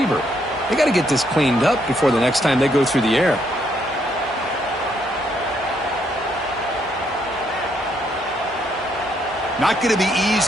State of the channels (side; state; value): both; normal; correlation 0.73